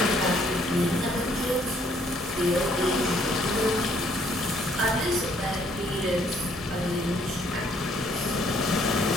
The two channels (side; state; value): both; normal; correlation 0.65